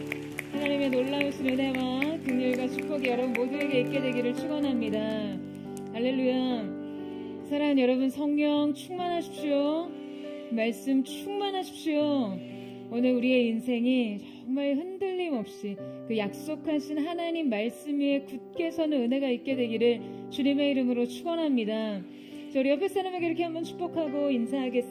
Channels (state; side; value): identical; both; correlation 1.00